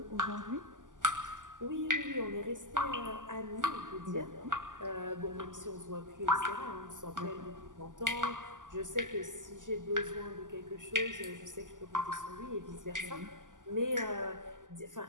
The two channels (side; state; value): left; late; 0.88 ms